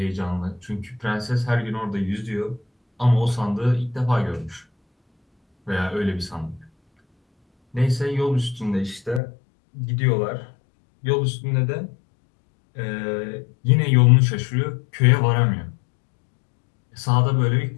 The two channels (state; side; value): drops out; right; at 9.2 s